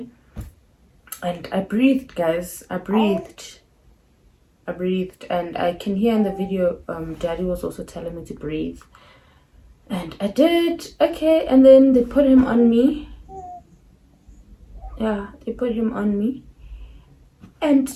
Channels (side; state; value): both; identical; correlation 1.00